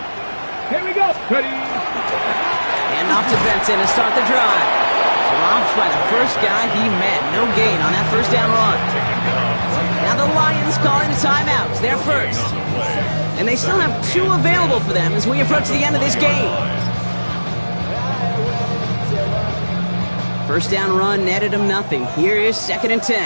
Here we go. Ready. And off to Benson to start the drive. Dropped by the first guy he met. No gain on that 1st down run. Now the Lions calling the timeouts. They're first. And they still have 2 available for them as we approach the end of this game. 1st down run netted him nothing. Here is 2nd and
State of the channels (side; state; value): both; inverted; correlation -1.00